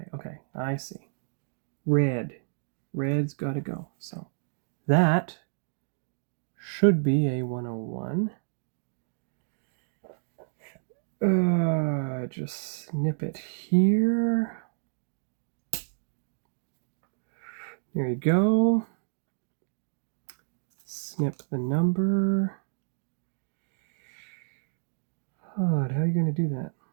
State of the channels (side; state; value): left; silent; digital silence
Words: I see. Red. Red's got to go. So that should be a 101. Just snip it here. There you go. Snip the number. Oh, how are you going to do that?